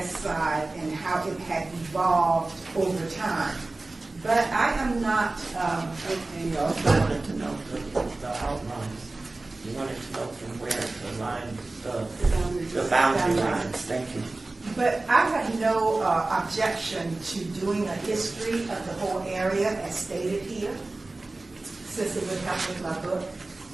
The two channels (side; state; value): left; quieter; 3.1 dB